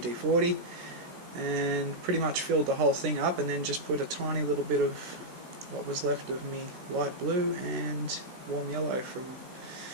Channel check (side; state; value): left; late; 16 ms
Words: and pretty much filled the whole thing up, and then just put a tiny little bit of what was left of me light blue and warm yellow from